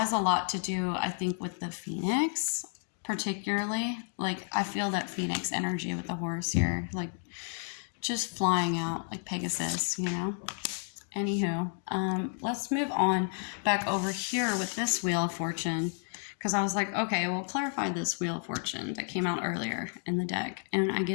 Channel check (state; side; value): silent; right; 57 dB below the other